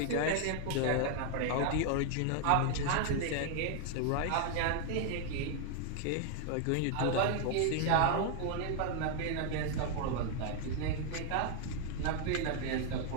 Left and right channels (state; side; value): different; both; correlation 0.01